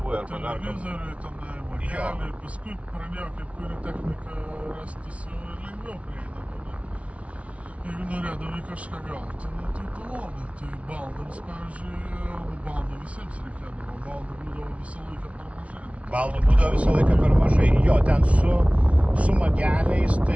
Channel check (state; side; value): late; left; 0.064 ms